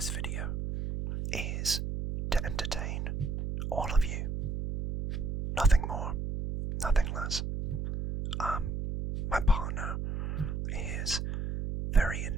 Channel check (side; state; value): right; noise; hum, 3 dB below the sound